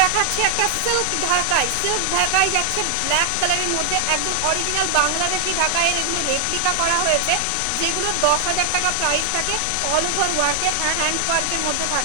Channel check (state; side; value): different; both; correlation 0.00